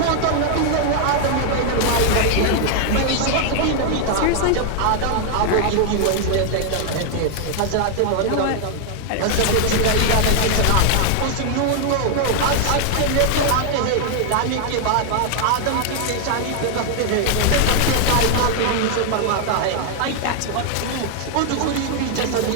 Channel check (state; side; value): different; both; correlation 0.00